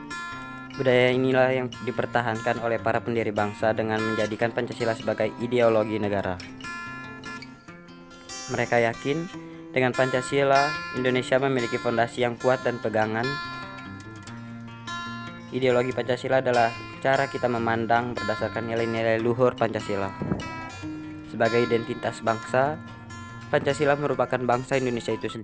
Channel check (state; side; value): identical; both; correlation 1.00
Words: Budaya inilah yang dipertahankan oleh para pendiri bangsa dengan menjadikan Pancasila sebagai ideologi negara. Mereka yakin dengan Pancasila, Indonesia memiliki fondasi yang kuat dan pegangan. Ideologi Pancasila adalah cara kita memandang berdasarkan nilai-nilai luhur Pancasila. Sebagai identitas bangsa, Pancasila merupakan bangsa Indonesia itu